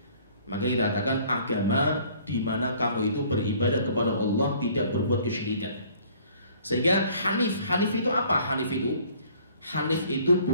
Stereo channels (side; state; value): both; inverted; correlation -0.56